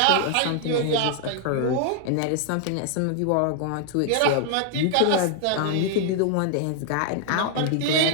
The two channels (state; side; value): different; both; correlation 0.00